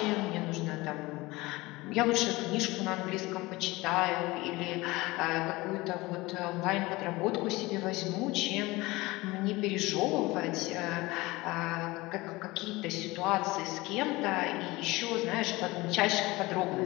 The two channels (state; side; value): quieter; right; 21.2 dB